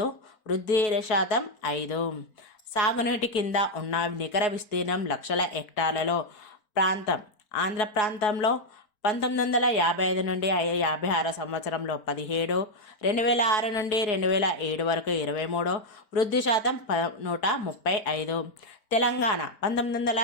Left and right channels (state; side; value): late; right; 4.5 ms